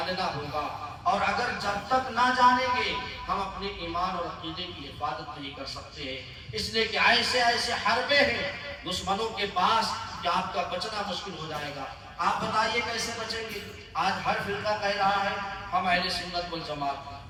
ہوگا، اور اگر جب تک نہ جانیں گے ہم اپنے ایمان اور عقیدے کی حفاظت نہیں کر سکتے ہیں، اس لیے کہ ایسے ایسے حربے ہیں دشمنوں کے پاس کہ آپ کا بچنا مشکل ہو جائے گا۔ آپ بتائیے کیسے بچیں گے؟ آج ہر فرقہ کہہ رہا ہے ہم اہل سنت والجماعت ہیں،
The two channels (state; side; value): identical; both; correlation 1.00